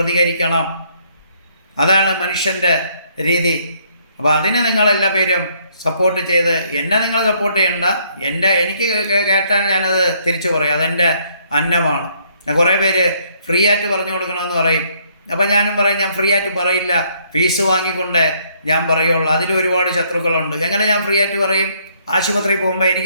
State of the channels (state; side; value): inverted; both; correlation -0.67